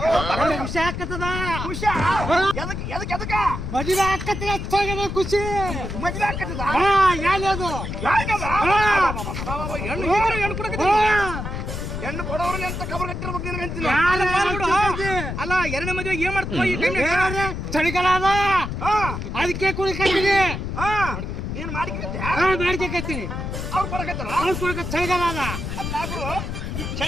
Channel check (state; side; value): noise; left; rumble, 5 dB below the sound